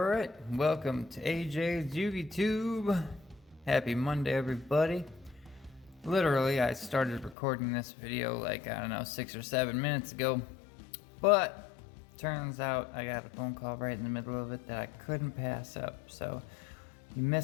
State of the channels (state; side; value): drops out; right; at 7.4 s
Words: welcome to AJ's YugiTube. Happy Monday, everybody. Literally, I started recording this video like, I don't know, 6 or 7 minutes ago. But, turns out I got a phone call right in the middle of it that I couldn't pass up. So, you